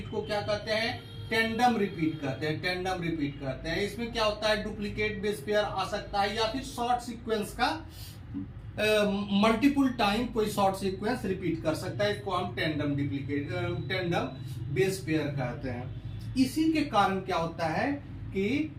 को क्या कहते हैं, टेंडम रिपीट कहते हैं। टेंडम रिपीट कहते हैं। इसमें क्या होता है, डुप्लीकेट बेस पेयर आ सकता है, या फिर शॉर्ट सीक्वेंस का मल्टीपल टाइम कोई शॉर्ट सीक्वेंस रिपीट कर सकता है। इसको हम टेंडम बेस पेयर कहते हैं। इसी के कारण क्या होता है कि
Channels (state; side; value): identical; both; correlation 1.00